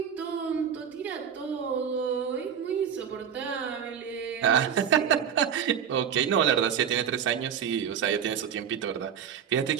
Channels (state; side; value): quieter; left; 8.1 dB